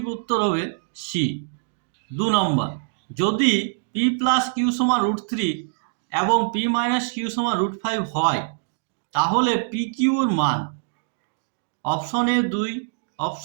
উত্তর হবে সি। 2 নম্বর, যদি p প্লাস কিউ সমান রুট 3 এবং p মাইনাস কিউ সমান রুট 5 হয় তাহলে পি কিউর মান। Option A 2,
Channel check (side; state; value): left; silent; digital silence